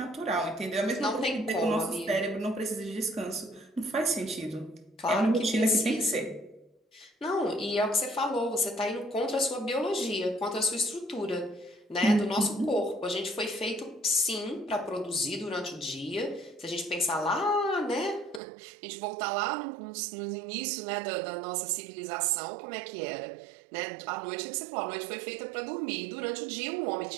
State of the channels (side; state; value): left; drops out; at 18.4 s